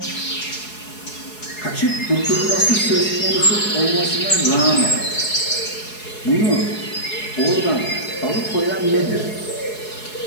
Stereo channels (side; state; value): right; late; 4.7 ms